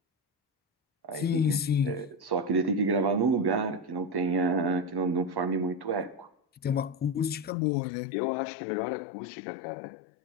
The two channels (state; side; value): drops out; right; at 7.6 s